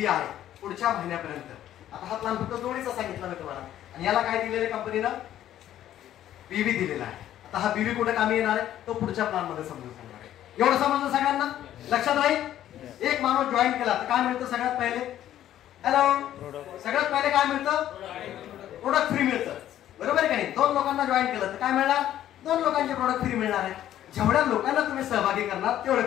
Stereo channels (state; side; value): quieter; right; 12.0 dB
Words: आहे पुढच्या महिन्यापर्यंत. आता हा प्लान फक्त जोडीचा सांगितला मी तुम्हाला आणि याला काय दिलेलं आहे कंपनीनं? बीवी दिलेला आहे. आता हा बीवी कुठे कामी येणार आहे तो पुढच्या प्लान मध्ये समजून सांगणार आहे. एवढं समजलं सगळ्यांना? लक्षात राहील. एक माणूस जॉईन केला तर काय मिळतं सगळ्यात पहिले? हॅलो, सगळ्यात पहिले काय मिळतं? प्रोडक्ट फ्री मिळतं. बरोबर आहे का नाही? 2 लोकांना जॉईन केलं तर काय मिळणार? 2 लोकांचे प्रोडक्ट फ्री मिळणार आहे. जेवढ्या लोकांना तुम्ही सहभागी करणार तेवढे